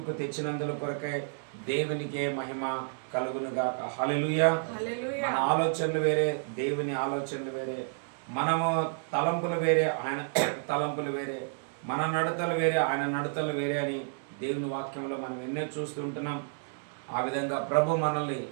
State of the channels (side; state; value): left; silent; digital silence